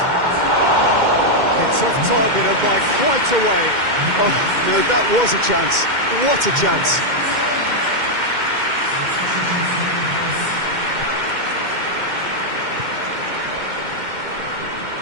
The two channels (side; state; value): left; late; 2.1 ms